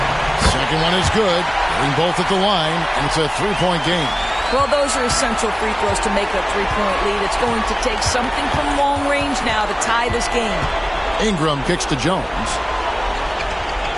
Second one is good. Getting both at the line, and it's a 3-point game. Well, those are essential free throws to make a 3-point lead. It's going to take something from long range now to tie this game. Ingram kicks to Jones.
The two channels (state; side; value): identical; both; correlation 1.00